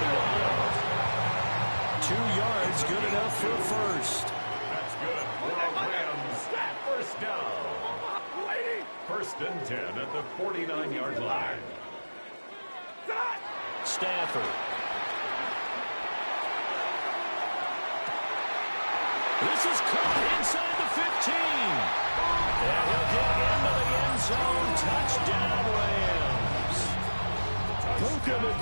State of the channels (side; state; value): both; inverted; correlation -1.00